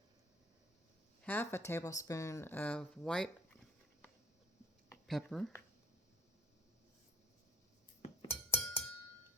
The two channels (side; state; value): both; normal; correlation 0.50